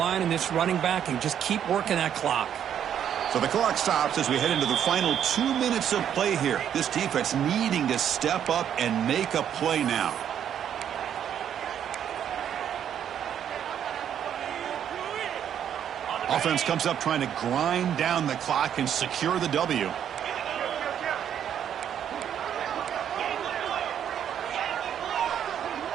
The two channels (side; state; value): left; quieter; 9.3 dB